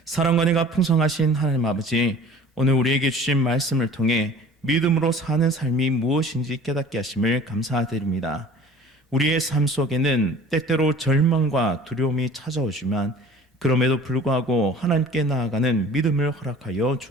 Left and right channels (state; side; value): normal; both; correlation 0.46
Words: 사랑과 은혜가 풍성하신 하나님 아버지, 오늘 우리에게 주신 말씀을 통해 믿음으로 사는 삶이 무엇인지 깨닫게 하심을 감사드립니다. 우리의 삶 속에는 때때로 절망과 두려움이 찾아오지만 그럼에도 불구하고 하나님께 나아가는 믿음을 허락하여